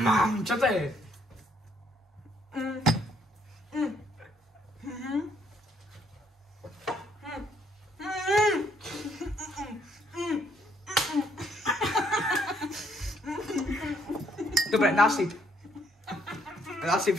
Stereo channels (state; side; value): normal; both; correlation 0.68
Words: Čo to je? Dobre, nasyp